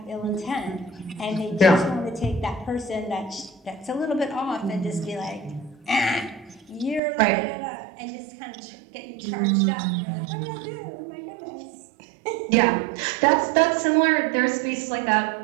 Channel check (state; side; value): drops out; left; at 7.0 s